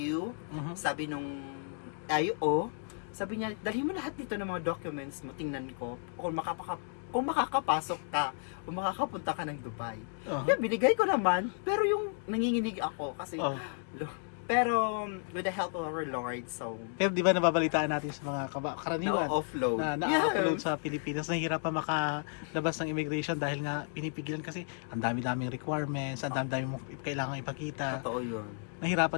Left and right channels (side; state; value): right; silent; 56 dB below the other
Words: sabi nung IO, sabi niya, dalhin mo lahat dito ng mga documents mo, tingnan ko kung makakapasok ka o makakapunta ka ng Dubai. Kaya binigay ko naman, pero yung nanginginig ako kasi pero with the help of our Lord, so Pero di ba nababalitaan natin sa mga karaniwan na-offload. na na-upload sa Pilipinas, nahihirapan makalabas ng immigration dahil nga pinipigilan kasi ang dami-daming requirements, ang dami-daming kailangan ipakita. Totoo yun.